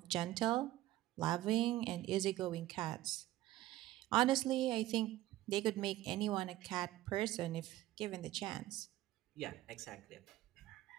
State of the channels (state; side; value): quieter; left; 15.5 dB